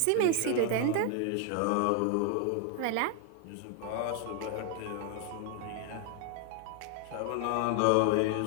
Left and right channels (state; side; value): different; both; correlation 0.00